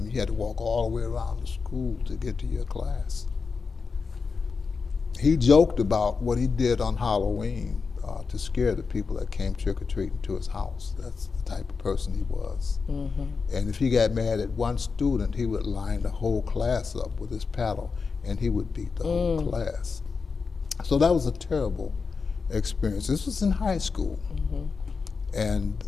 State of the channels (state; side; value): quieter; right; 4.9 dB